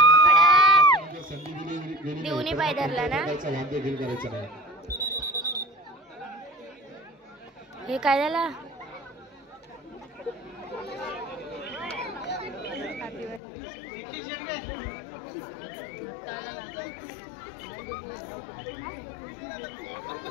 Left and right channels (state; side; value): drops out; right; at 13.4 s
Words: देऊनी पाय धरला ना वाद्य घेऊन करायचं नाही. हे काय झाला?